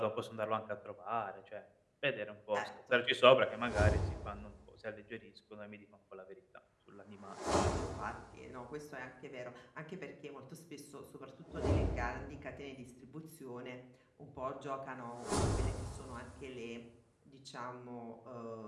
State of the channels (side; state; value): both; identical; correlation 1.00